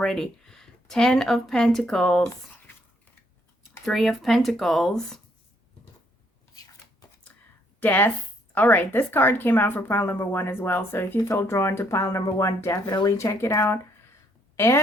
10 of Pentacles. 3 of Pentacles. Death. All right, this card came out for pile number 1 as well. So if you feel drawn to pile number 1, definitely check it out.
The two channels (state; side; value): normal; both; correlation 0.69